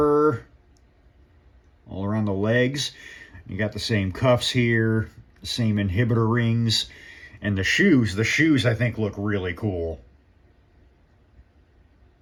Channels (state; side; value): identical; both; correlation 1.00